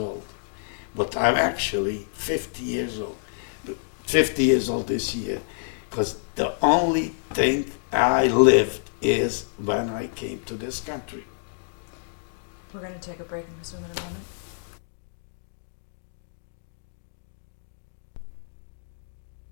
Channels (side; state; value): right; silent; digital silence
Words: but I'm actually 50 years old. 50 years old this year, because the only thing I lived is when I came to this country. We're going to take a break and resume in a moment.